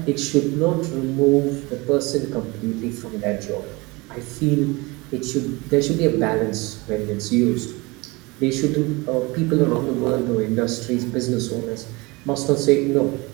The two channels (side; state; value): left; quieter; 24.6 dB